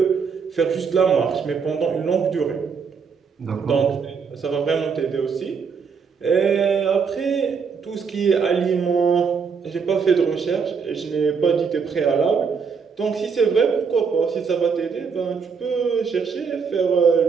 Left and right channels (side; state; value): left; quieter; 5.8 dB